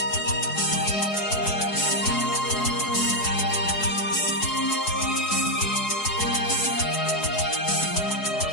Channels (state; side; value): late; right; 4.8 ms